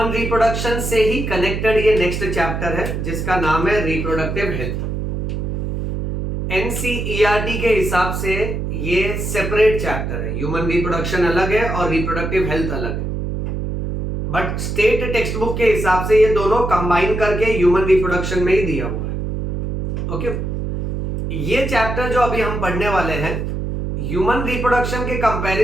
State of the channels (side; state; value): right; noise; hum, 3 dB below the sound